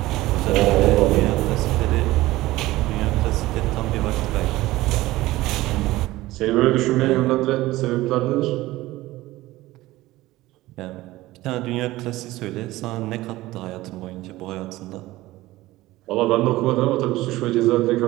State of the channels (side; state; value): left; quieter; 17.7 dB